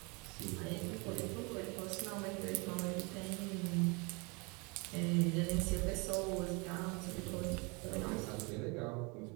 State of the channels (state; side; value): quieter; left; 29.9 dB